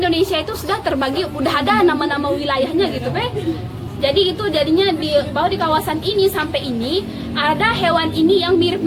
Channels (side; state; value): both; identical; correlation 1.00